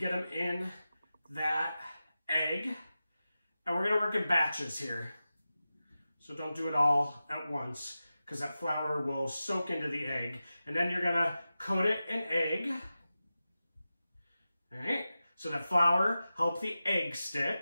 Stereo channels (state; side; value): inverted; both; correlation -0.93